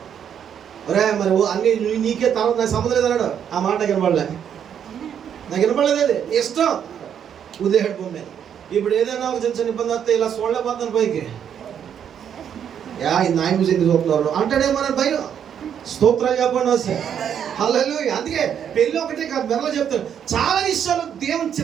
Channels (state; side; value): quieter; left; 8.6 dB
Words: ఒరే మరి అన్ని నీకే తర్వాత నాకు సంబంధం లేదన్నాడు. ఆ మాట వినపడలే, నాకు వినపడలేదు. అది ఇష్టం ఉదయం భూమి. ఇప్పుడు ఏదైనా ఒక చిన్న చిన్న ఇబ్బంది వస్తే ఇలా చూడలేకపోతాను పైకి. ఇది నాయన చూసి ఎందుకు చూస్తున్నారు అంటాడేమో అని భయం. స్తోత్రాలు చెప్పండి వస్తే. హల్లెలూయా. అందుకే పెళ్ళి ఒకటే కాదు, మెరలో చెప్తాను, చాలా విషయాలు దేవుని